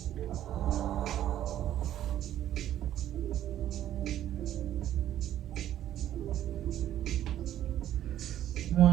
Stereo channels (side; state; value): left; quieter; 11.9 dB